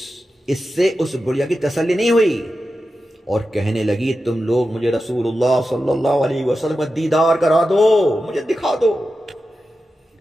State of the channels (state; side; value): normal; both; correlation 0.91